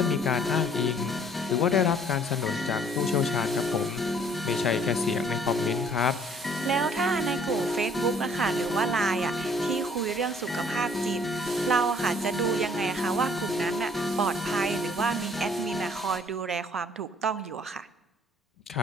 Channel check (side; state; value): both; normal; correlation 0.59